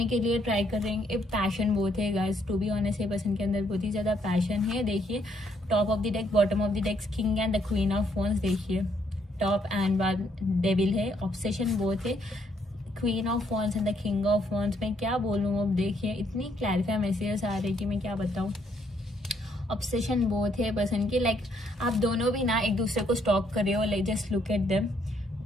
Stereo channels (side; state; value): both; normal; correlation 0.71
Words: के लिए ट्राई कर रहे हैं। एक पैशन बहुत है गाइस, टू बी ऑनेस्ट ये पर्सन के अंदर बहुत ही ज्यादा पैशन है। देखिए top of the deck, bottom of the deck, king and the queen of wands. देखिए टॉप एंड बाद डेविल है, ऑब्सेशन बहुत है, queen of wands and the king of wands. मैं क्या बोलूँ अब, देखिए इतनी क्लैरिफाई मैसेजेस आ रही कि मैं क्या बताऊँ। ऑब्सेशन बहुत है पर्सन की, लाइक आप दोनों भी ना एक दूसरे को स्टॉक कर रहे हो, like just look at them,